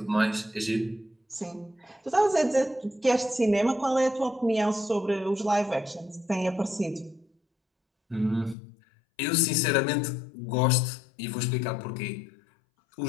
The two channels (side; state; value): right; drops out; at 8.6 s